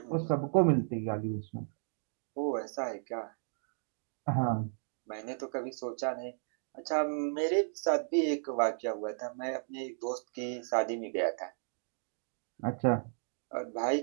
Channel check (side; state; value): left; silent; digital silence